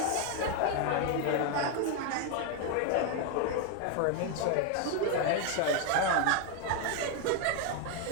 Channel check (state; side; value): different; both; correlation 0.01